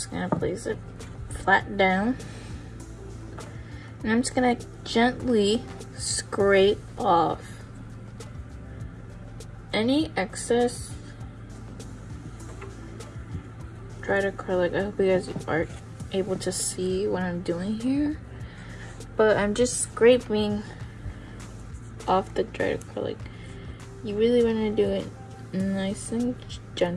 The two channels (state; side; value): identical; both; correlation 1.00